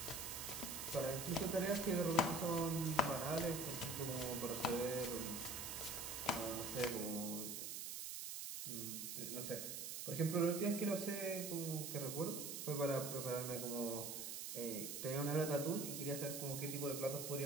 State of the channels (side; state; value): right; noise; hiss, 5 dB below the sound